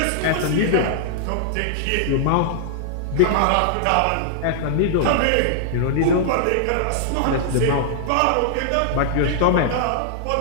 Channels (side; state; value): both; different; correlation -0.01